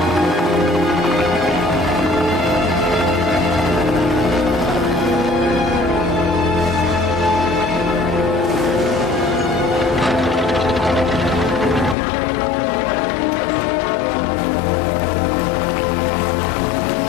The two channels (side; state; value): right; drops out; at 12.0 s